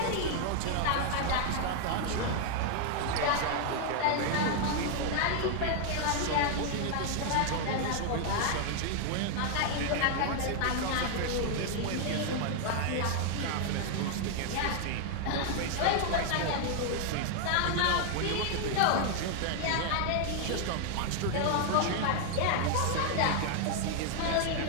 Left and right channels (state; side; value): different; both; correlation 0.00